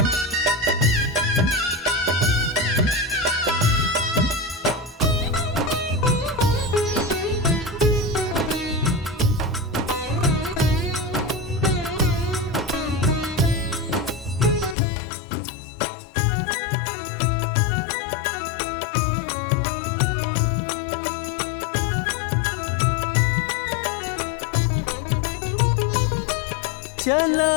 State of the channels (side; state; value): right; drops out; at 14.8 s